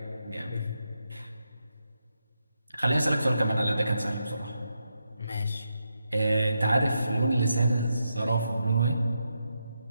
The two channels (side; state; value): both; inverted; correlation -0.84